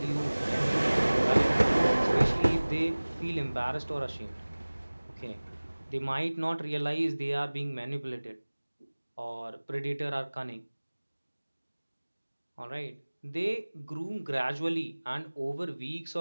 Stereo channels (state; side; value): inverted; both; correlation -1.00